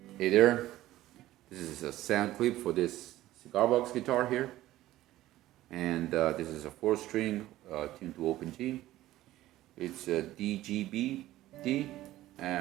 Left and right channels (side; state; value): left; quieter; 15.3 dB